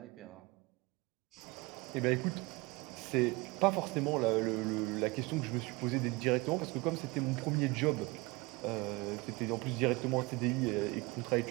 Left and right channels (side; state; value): left; quieter; 24.6 dB